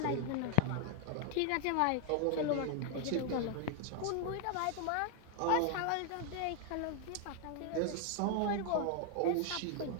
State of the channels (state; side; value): different; both; correlation 0.00